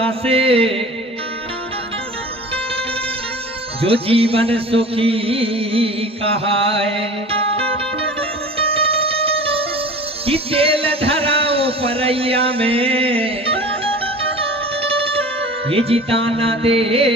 से जो जीवन सुखी कहाए, कि तेल धराओ परैया में ये जिताना दे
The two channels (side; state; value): both; normal; correlation 0.39